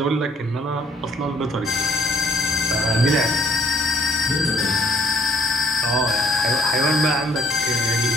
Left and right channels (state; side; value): normal; both; correlation 0.62